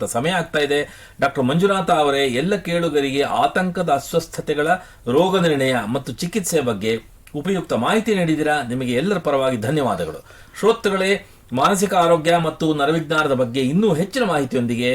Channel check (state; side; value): identical; both; correlation 1.00